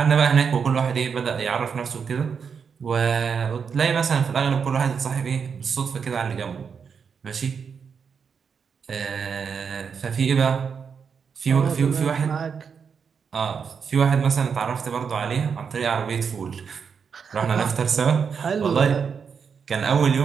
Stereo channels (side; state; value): left; quieter; 6.3 dB